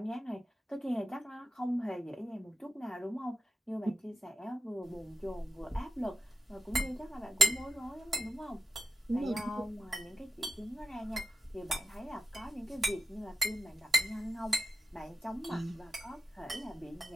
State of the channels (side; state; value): both; normal; correlation 0.88